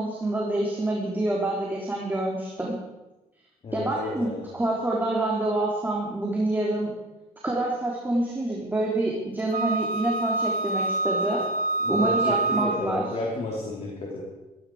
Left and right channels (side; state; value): both; normal; correlation 0.39